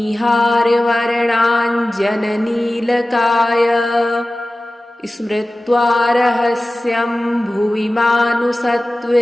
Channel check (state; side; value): normal; both; correlation 0.96